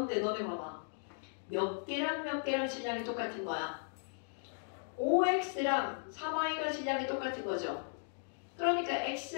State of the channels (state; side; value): silent; right; digital silence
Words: 너네 봐봐. 몇 개랑 몇 개랑 질량이 똑같은 거야. 5x랑 3y가 질량이 똑같은 거죠. 그러니까 x